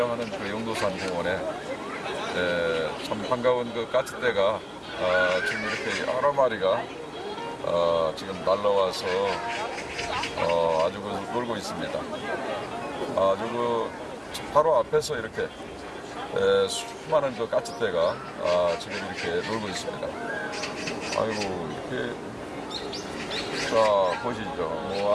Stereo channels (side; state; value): both; identical; correlation 1.00